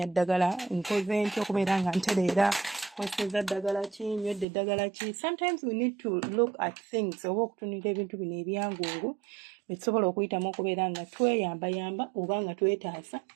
ddagala nkoze ntya okubeera nga ntereera kweseza ddagala ki nywedde ddagala ki. Sometimes we need to look at things oba okutunira ebintu bino ebyangungu betusobola okuyitamu okubeera nga tweyambayamba oba nga twetaasa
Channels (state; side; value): drops out; left; at 4.5 s